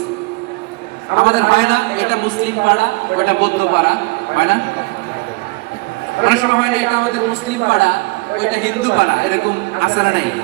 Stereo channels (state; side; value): quieter; left; 25.0 dB